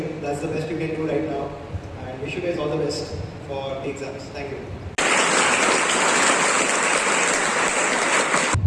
That's the best you can do right now. And wish you guys all the best for the exams. Thank you.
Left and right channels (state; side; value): identical; both; correlation 1.00